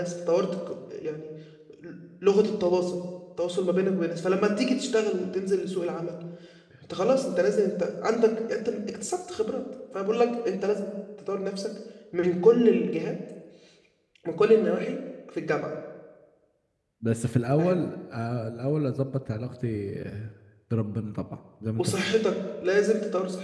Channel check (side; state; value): both; identical; correlation 1.00